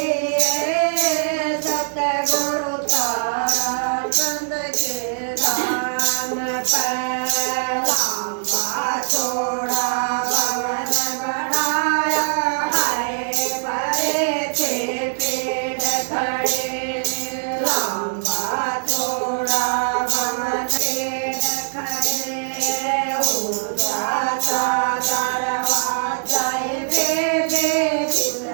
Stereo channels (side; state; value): left; silent; 65 dB below the other